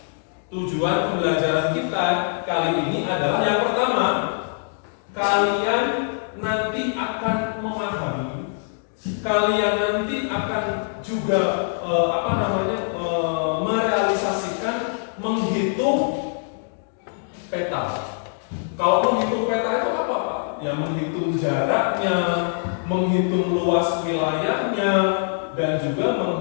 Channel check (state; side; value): silent; right; digital silence